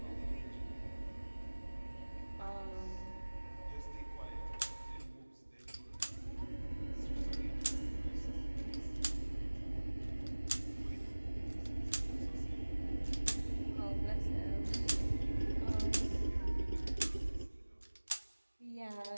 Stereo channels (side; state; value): both; inverted; correlation -1.00